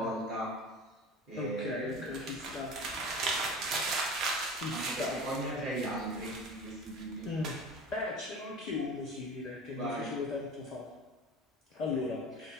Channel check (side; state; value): both; normal; correlation 0.36